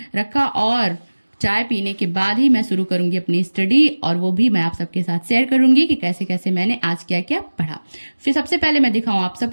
रखा और चाय पीने के बाद ही मैं शुरू करूंगी अपनी स्टडी, और वो भी मैं आप सबके साथ शेयर करूंगी कि कैसे कैसे मैंने आज क्या क्या पढ़ा। फिर सबसे पहले मैं दिखाऊं आप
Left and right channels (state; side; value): inverted; both; correlation -1.00